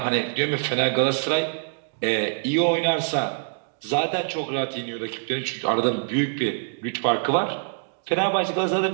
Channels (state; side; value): silent; left; digital silence